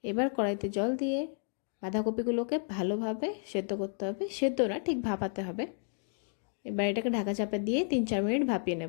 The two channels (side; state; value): right; silent; 57 dB below the other